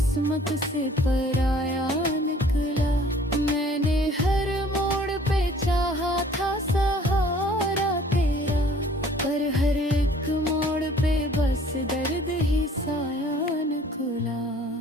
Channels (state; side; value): normal; both; correlation 0.54